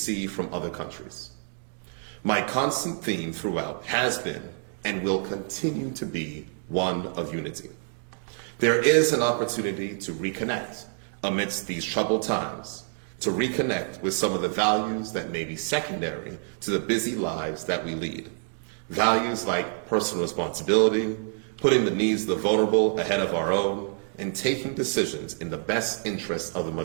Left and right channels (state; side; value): silent; left; 60 dB below the other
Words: from other countries. My constant theme throughout has been and will continue to be one of unity. There is an opportunity to reconnect amidst these troubled times, to reconnect with some of the values that may be secondary to the busy lives that we lead. Values like personal responsibility, putting the needs of the vulnerable ahead of our own, and taking decisions in the best interest of the